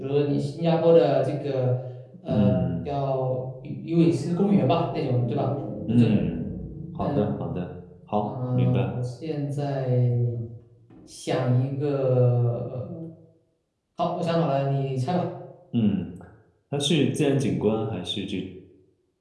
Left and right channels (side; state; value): both; identical; correlation 1.00